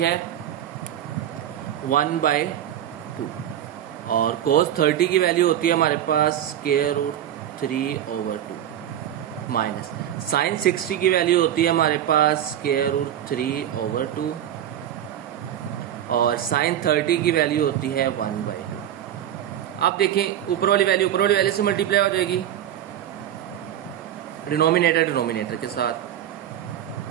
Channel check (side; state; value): left; quieter; 11.1 dB